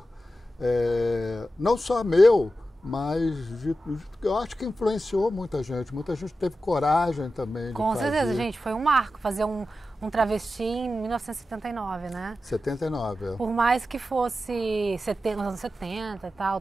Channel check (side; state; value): both; normal; correlation 0.92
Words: não só meu, mas eu acho que influenciou muita gente teve coragem também de Com fazer. certeza, gente, foi um marco fazer um travesti em 1979, né? 79, Por mais que fosse nos anos 70 e tal,